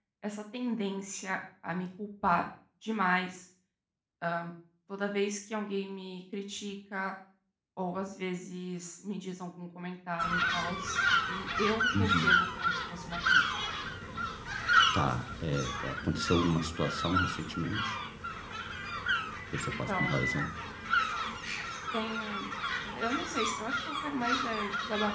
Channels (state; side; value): identical; both; correlation 1.00